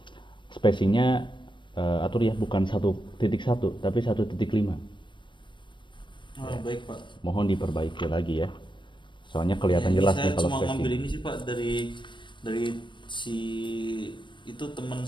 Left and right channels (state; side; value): late; right; 0.23 ms